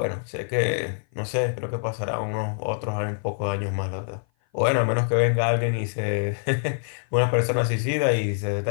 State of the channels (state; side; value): silent; right; 56 dB below the other